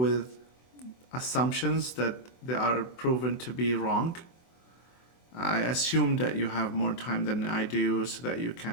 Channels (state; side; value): late; right; 24 ms